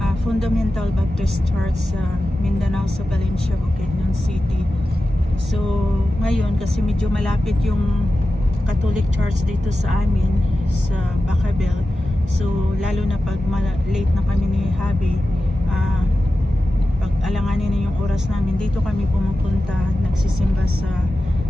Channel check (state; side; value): normal; both; correlation 0.93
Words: Fundamental Baptist Church sa Mindanao, sa Valencia, Bukidnon City. So ngayon kasi medyo malapit yung Catholic Church dito sa amin sa Bacabel, so lalo na pag late na kami ni Habi, pag alanganin na yung oras namin, dito kami pumupunta, nagsisimba sa